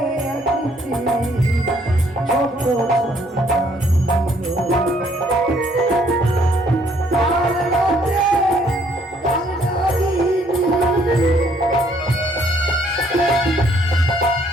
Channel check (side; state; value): both; normal; correlation 0.65